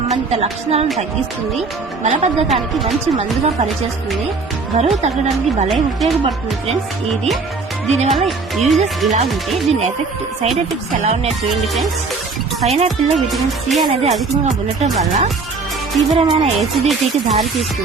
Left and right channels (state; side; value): quieter; left; 4.3 dB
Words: లక్షణాలను తగ్గిస్తుంది, మలబద్ధకానికి మంచి మందుగా పనిచేస్తుంది, బరువు తగ్గడానికి భలే ఉపయోగపడుతుంది ఫ్రెండ్స్. దీనివల్ల యూజెస్ ఇలా ఉంటే దీని సైడ్ ఎఫెక్ట్స్ ఎలా ఉన్నాయి చూడండి ఫ్రెండ్స్. పైనాపిల్ లో విటమిన్ సి అనేది అధికంగా ఉండటం వల్ల తీవ్రమైన ఎసిడిటీకి దారి